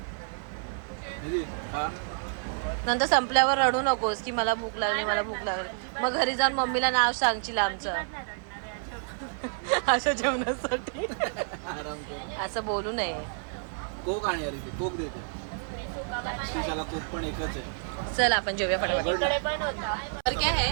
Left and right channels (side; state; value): left; silent; 58 dB below the other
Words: दीदी हा नंतर संपल्यावर रडू नकोस की मला भूक लागली मला भूक लागली. मग घरी जाऊन मम्मीला नाव सांगशील आमचं. अशा जेवणासाठी असं बोलू नये. कोक आणि अरे ते कोक देतो. त्याला कोक पण एकच आहे. चल आपण जेवूया फटाफट. इकडे पण होता. और क्या